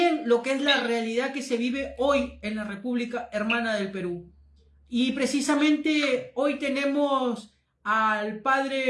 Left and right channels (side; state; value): both; identical; correlation 1.00